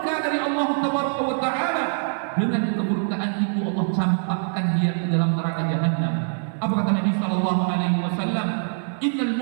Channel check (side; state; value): left; silent; 60 dB below the other